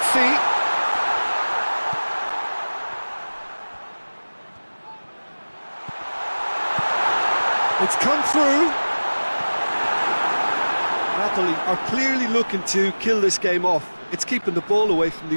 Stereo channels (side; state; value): both; inverted; correlation -1.00